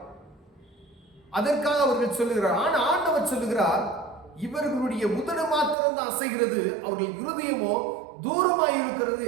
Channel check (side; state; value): left; drops out; at 5.8 s